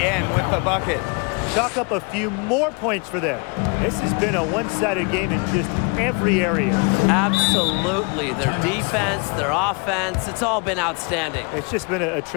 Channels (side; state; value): right; quieter; 32.6 dB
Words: with the bucket. Chalk up a few more points for them. This has been a one-sided game in just every area. Absolutely. Their defense, their offense, it's all been outstanding. It's just been a